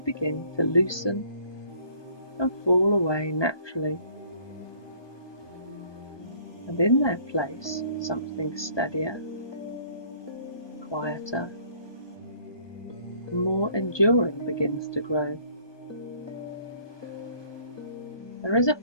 to loosen and fall away naturally. And in their place, something steadier, quieter, and more enduring begins to grow. There is a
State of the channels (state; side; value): late; right; 1.2 ms